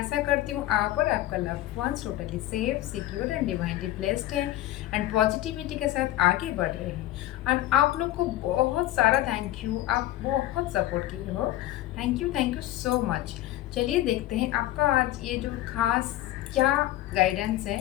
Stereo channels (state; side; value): quieter; right; 14.9 dB